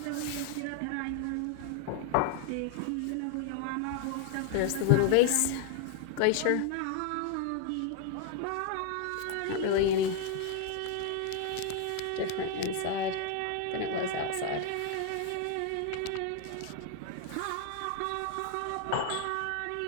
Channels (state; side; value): different; both; correlation 0.00